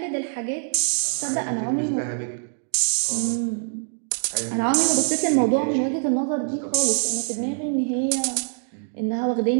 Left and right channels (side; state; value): left; silent; digital silence